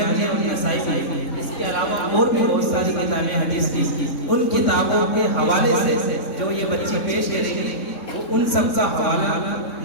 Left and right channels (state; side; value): late; right; 3.7 ms